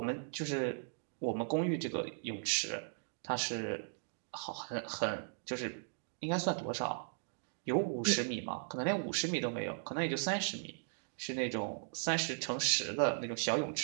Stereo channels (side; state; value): left; silent; digital silence